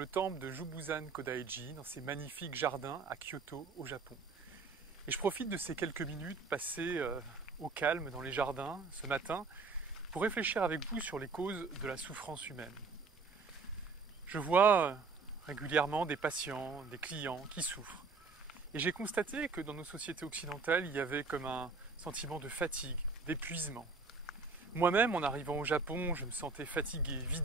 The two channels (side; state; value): left; quieter; 4.3 dB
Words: temple de Jubuzan Kodaiji, dans ces magnifiques jardins à Kyoto, au Japon. Et je profite de ces quelques minutes passées au calme dans les jardins ce matin pour réfléchir avec vous sur les causes de la souffrance humaine. Je vois régulièrement des patients, des clients qui souffrent. Et j'ai constaté que dans nos sociétés occidentales, il y avait comme un sentiment de fatigue, d'épuisement. Moi-même, en arrivant au Japon, je me sentais fatigué,